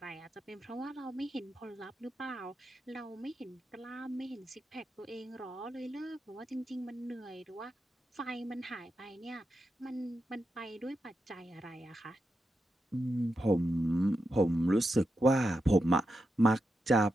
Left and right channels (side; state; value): both; normal; correlation 0.87